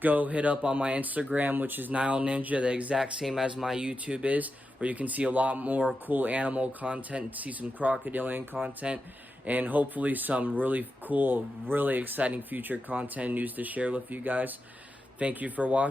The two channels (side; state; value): both; normal; correlation 0.89